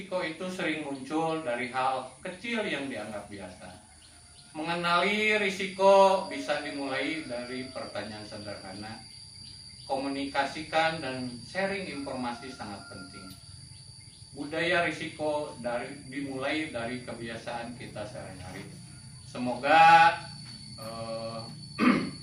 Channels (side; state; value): both; identical; correlation 1.00